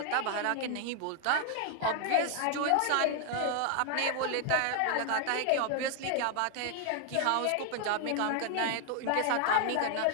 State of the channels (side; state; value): both; different; correlation 0.00